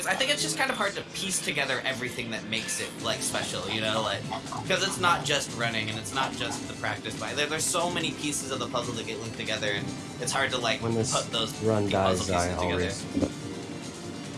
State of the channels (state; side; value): identical; both; correlation 1.00